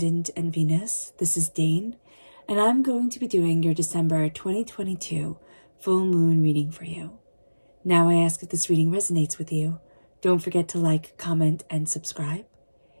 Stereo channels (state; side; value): inverted; both; correlation -1.00